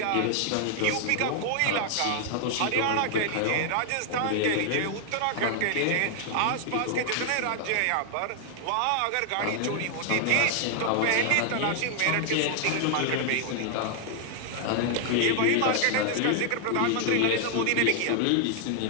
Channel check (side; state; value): both; different; correlation 0.00